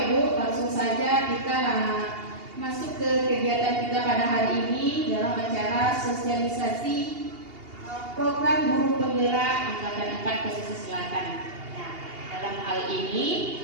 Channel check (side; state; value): left; late; 2.8 ms